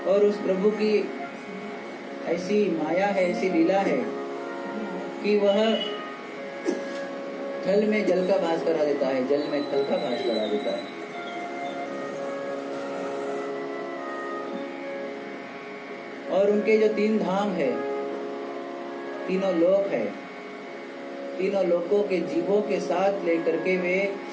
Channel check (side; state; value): both; identical; correlation 1.00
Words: और उस प्रभु की ऐसी माया है, ऐसी लीला है कि वह थल में जल का भास करा देता है, जल में थल का भास करा देता है। और उनके जो 3 धाम है, तीनों लोक है, तीनों लोकों के जीवों के साथ लेकर के वे